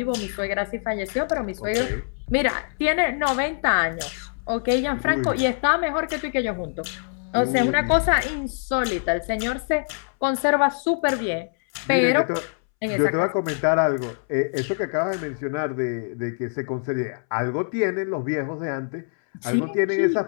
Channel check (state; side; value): silent; right; 62 dB below the other